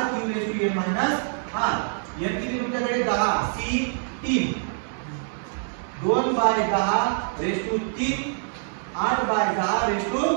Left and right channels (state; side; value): silent; left; digital silence